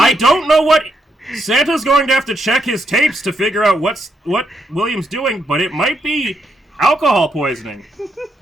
don't know what Santa's going to have to check his tapes to figure out what William's doing, but it might be alcohol poisoning.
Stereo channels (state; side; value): normal; both; correlation 0.79